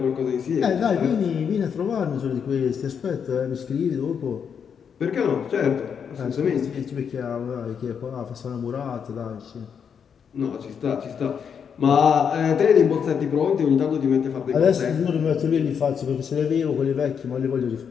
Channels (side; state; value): right; quieter; 7.1 dB